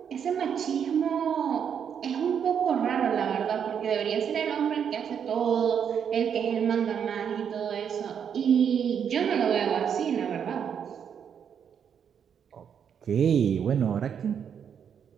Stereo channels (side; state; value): left; quieter; 7.8 dB